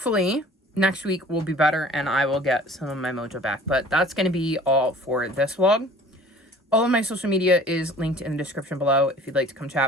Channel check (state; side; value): normal; both; correlation 0.48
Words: next week will be better and I will get some of my mojo back. But that's going to be all for this vlog. All of my social media is linked in the description below if you'd like to come